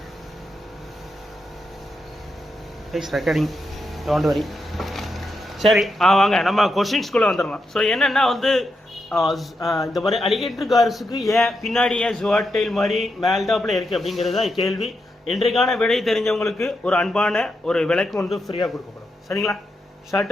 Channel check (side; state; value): both; normal; correlation 0.84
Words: Please recording, don't worry. சரி, வாங்க நம்ம கொஷின்ஸ்குள்ளே வந்துடலாம். ஸோ என்னென்னா வந்து இந்த மாதிரி அலிகேட்டர் கார்ஸுக்கு ஏன் பின்னாடி ஏன் ஜுவாட்டைல் மாதிரி மேல்டாப்பில் இருக்குது அப்படிங்கிறது தான் கேள்வி. இன்றைக்கான விடை தெரிஞ்சவங்களுக்கு ஒரு அன்பான ஒரு விலைக்கு வந்து ஃப்ரீயாக கொடுக்கப்படும். சரிங்களா?